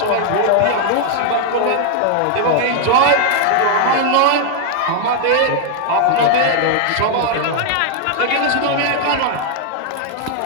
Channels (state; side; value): different; both; correlation 0.00